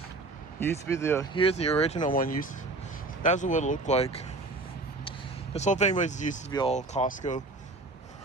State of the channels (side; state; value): left; quieter; 3.1 dB